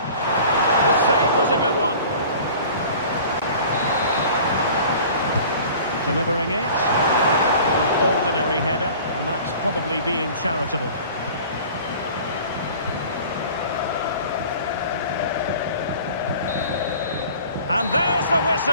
save was a good one. Delivering it. An ordinary header, and that's probably being charitable. And there's the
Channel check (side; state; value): both; inverted; correlation -0.45